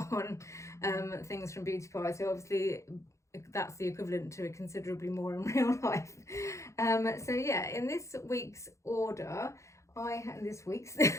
things from Beauty Pie. So obviously that's the equivalent to considerably more in real life. So yeah, in this week's order,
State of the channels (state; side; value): late; right; 0.14 ms